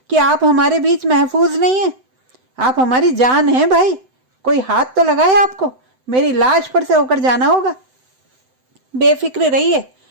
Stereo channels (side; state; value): left; late; 7.8 ms